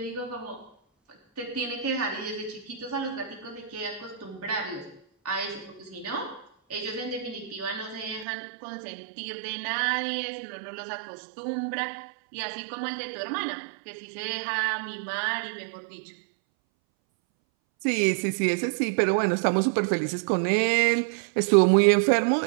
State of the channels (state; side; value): drops out; left; at 8.2 s